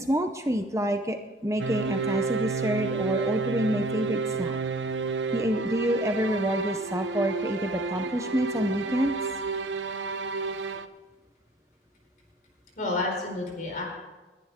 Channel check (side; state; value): both; normal; correlation 0.52